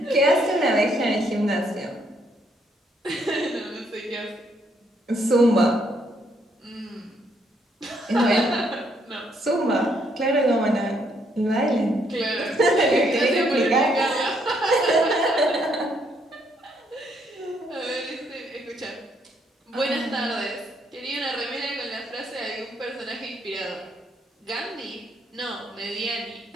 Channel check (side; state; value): both; normal; correlation 0.72